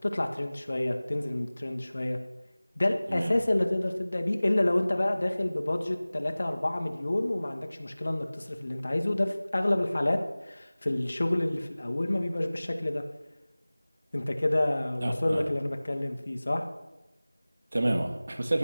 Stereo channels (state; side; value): inverted; both; correlation -0.99